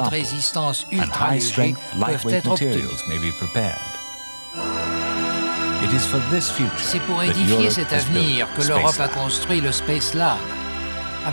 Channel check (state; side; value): inverted; both; correlation -1.00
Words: résistance ultra légers peuvent être obtenus. C'est pour édifier cet avenir que l'Europe a construit le Space Lab.